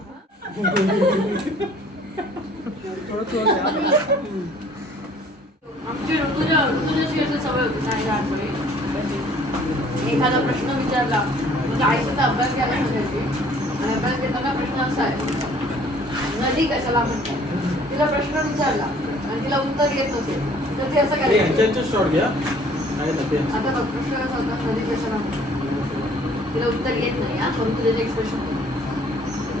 आमची ऋतुजाची अशी सवय होती नाही लहानपणी. एखादा प्रश्न विचारला म्हणजे आईचा अभ्यास घ्यायला सांगायची आणि अभ्यास घेताना प्रश्न असा आहे नदी कशाला म्हणतात. तिला प्रश्न विचारला आणि तिला उत्तर येत नसेल तर ते असं करायचं. शॉर्ट घ्या. आता बघ प्रश्न कसा होता नदी कशाला म्हणतात. तिला उत्तर येत नाही हा परंतु त्याचे एक्सप्रेशन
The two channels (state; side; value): normal; both; correlation 0.56